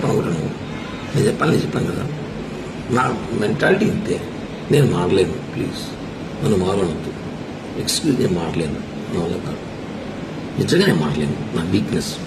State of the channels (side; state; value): both; identical; correlation 1.00